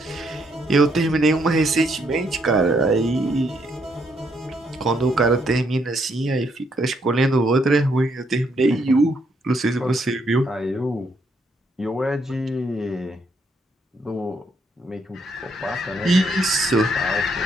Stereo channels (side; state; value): both; normal; correlation 0.74